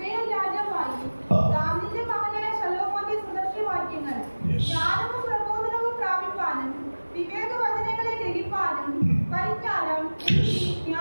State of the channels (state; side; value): inverted; both; correlation -1.00